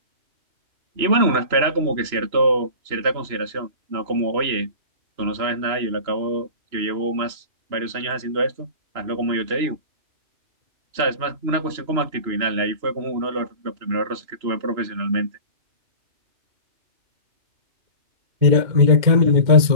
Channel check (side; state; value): left; late; 3.0 ms